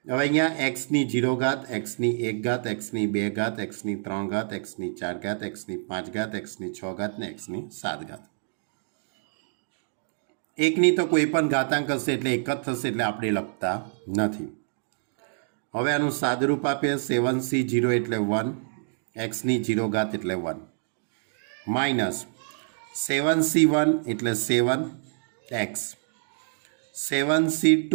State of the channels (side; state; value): left; silent; digital silence